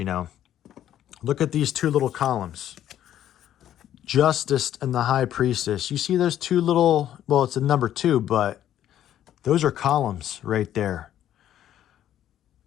Look at these two little columns. Justice and the High Priestess. You see those two little, well, it's a number 2, but those are columns right there.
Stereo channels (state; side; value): quieter; right; 11.4 dB